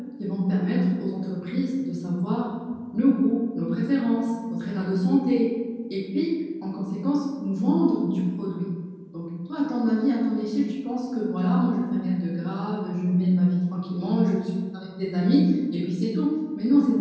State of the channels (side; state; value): both; identical; correlation 1.00